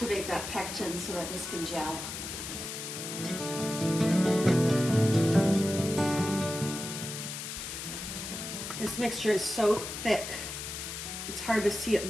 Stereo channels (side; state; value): left; noise; hiss, 7 dB below the sound